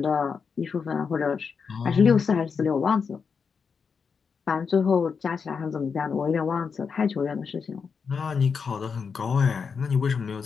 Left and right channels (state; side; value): quieter; right; 5.8 dB